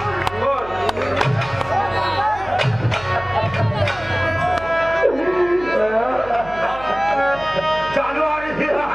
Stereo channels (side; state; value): right; noise; hum, 17 dB below the sound